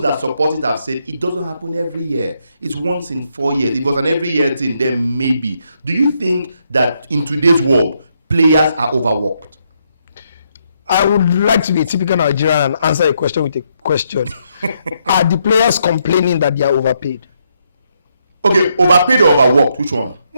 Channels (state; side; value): inverted; both; correlation -0.76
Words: that support it have said it doesn't happen every year. It's once in 4 years. If it was an every year thing, then maybe. Do you think that in today's world, players are overworked? I would like to be a typical Nigerian and answer a question with a question. Are the players complaining that they are overpaid? Okay, overpaid or overworked? Which one?